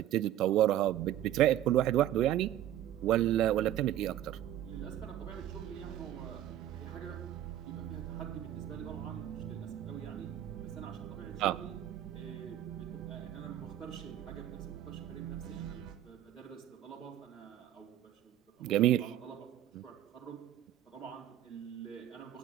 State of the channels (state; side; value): quieter; left; 12.2 dB